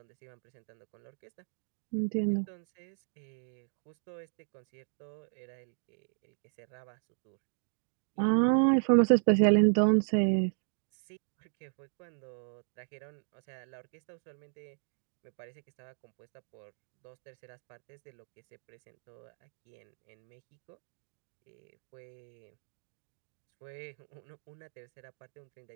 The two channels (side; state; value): left; silent; digital silence